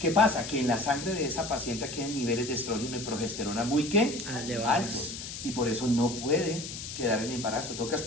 pasa? Que en la sangre de esa paciente quedan niveles de estrógeno y progesterona muy ¿qué? Elevados. Altos. Y por eso no puede quedar en embarazo. Toca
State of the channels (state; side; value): noise; left; hiss, 9 dB below the sound